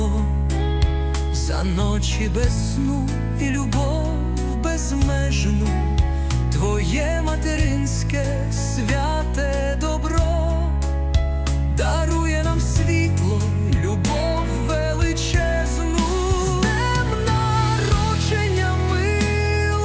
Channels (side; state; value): both; identical; correlation 1.00